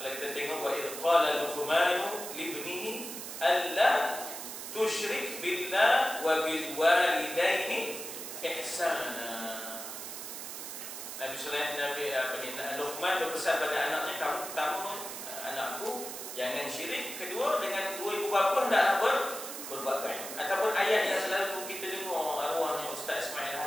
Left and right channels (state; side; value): noise; right; hiss, 8 dB below the sound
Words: kita tengok wa idh qala Luqmanu libnihi alla tusyrik billah wa bil walidaini ihsana. Nabi Luqman berpesan pada anaknya, kamu pertama anakku jangan syirik, kedua dengan dua ibu bapa hendaklah berbuat baik. Ataupun ayat yang selalu kita dengar arwahnya Ustaz Ismail